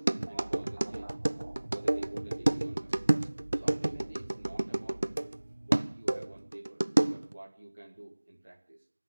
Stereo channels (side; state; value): both; inverted; correlation -1.00